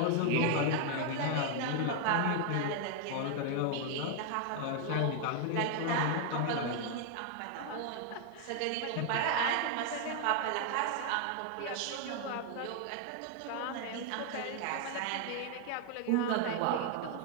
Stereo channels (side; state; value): both; different; correlation 0.00